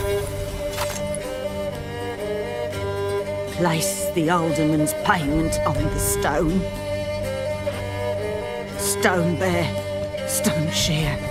Place the alderman's payment on the stone. Stone bear. Stone shear.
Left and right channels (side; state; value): both; identical; correlation 1.00